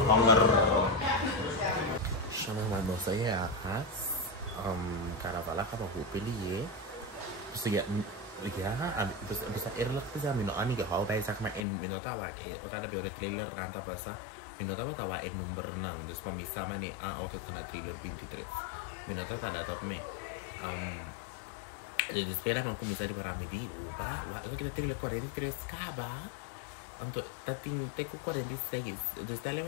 Shona mandou saya akas. Carnaval acaba com peli. So ya bisa erlak bisa mino ani ga hau bai sak ma en mino tawa ora da beore trailer ranta pasa mino tawa en number nang des pamisa mani auto kana trailer 23 mino tawa top me espera man kumisa di paramedi uba wa kita trailer 43 kaba anto tating teku 46 des tale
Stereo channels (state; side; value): drops out; right; at 11.7 s